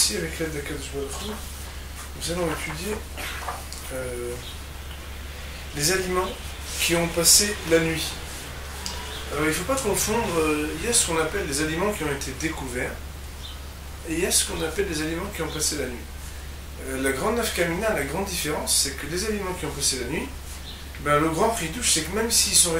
avec l'aide d'Akadosh Baruch Hu, nous allons étudier les aliments qui ont passé la nuit. Alors il ne faut pas confondre, il y a ce qu'on appelle les aliments qui ont été découverts, et il y a ce qu'on appelle les aliments qui ont passé la nuit. La grande nafkamina, la grande différence, c'est que les aliments qui ont passé la nuit, le grand chidouche, c'est que même s'ils sont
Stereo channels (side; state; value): both; identical; correlation 1.00